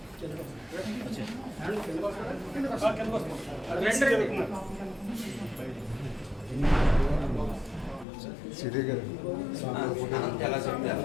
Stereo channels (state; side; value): drops out; right; at 8.1 s